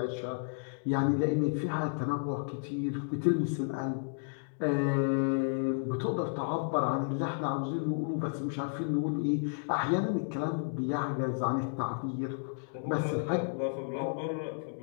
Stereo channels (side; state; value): right; silent; digital silence